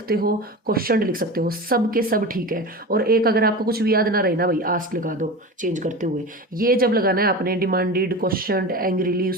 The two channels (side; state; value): both; normal; correlation 0.28